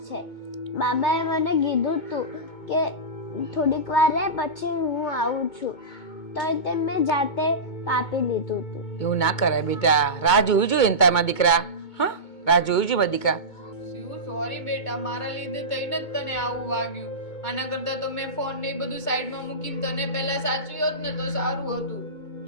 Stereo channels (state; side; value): late; right; 2.2 ms